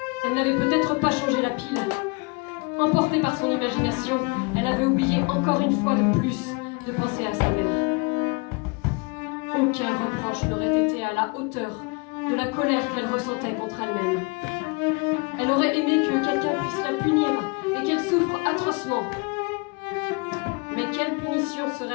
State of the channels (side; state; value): right; quieter; 29.8 dB